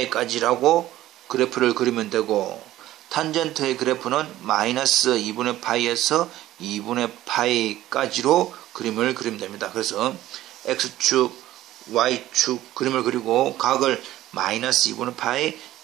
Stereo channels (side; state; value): left; quieter; 14.6 dB